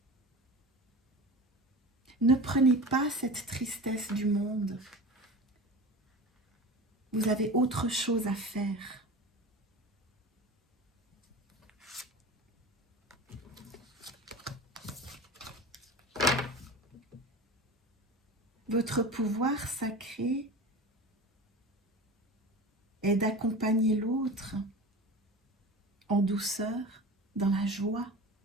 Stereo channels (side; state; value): both; normal; correlation 0.32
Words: Ne prenez pas cette tristesse du monde. Vous avez autre chose à faire. Votre pouvoir sacré est d'accompagner l'autre en douceur, dans la joie.